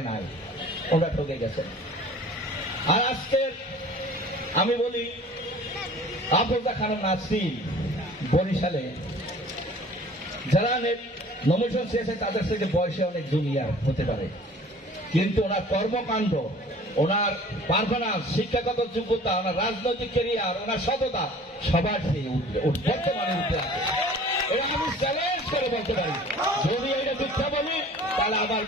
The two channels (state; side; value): normal; both; correlation 0.47